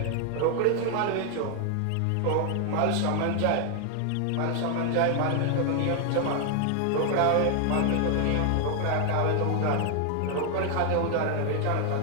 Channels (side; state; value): both; different; correlation 0.00